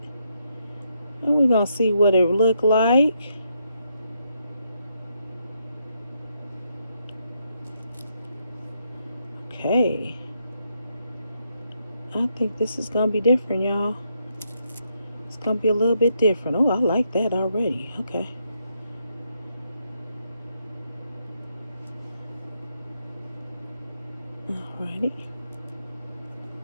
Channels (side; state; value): both; inverted; correlation -0.78